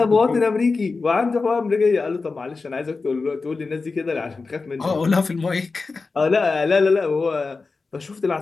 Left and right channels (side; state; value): right; quieter; 4.1 dB